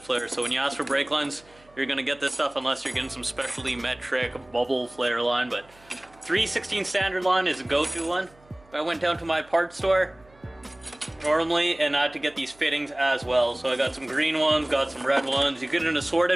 So when you ask for brake lines, you're going to get this stuff unless you're getting some specialty metric bubble flare line. But 3/16 standard line is a go-to one. I went down to my parts store normally and I had to get these fittings as well. So I got some green ones, got some red ones. You get an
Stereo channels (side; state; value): right; noise; hum, 28 dB below the sound